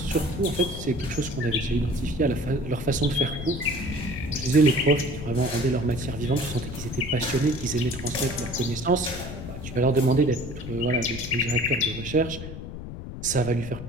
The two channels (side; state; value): left; noise; rumble, 10 dB below the sound